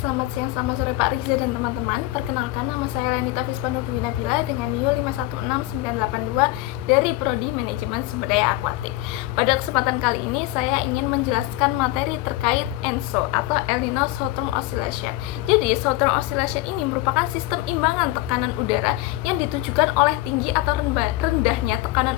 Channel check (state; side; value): quieter; right; 17.6 dB